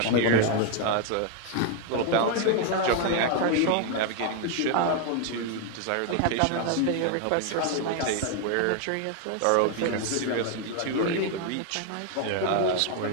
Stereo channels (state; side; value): different; both; correlation 0.00